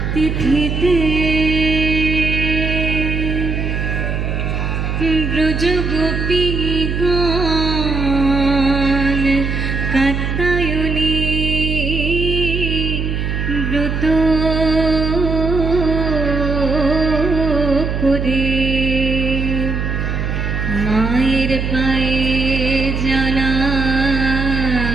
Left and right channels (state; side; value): noise; right; hum, 1 dB below the sound